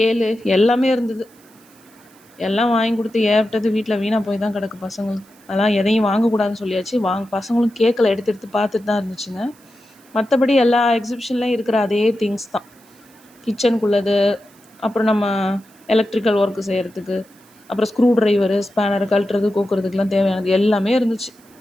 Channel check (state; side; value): noise; right; hiss, 29 dB below the sound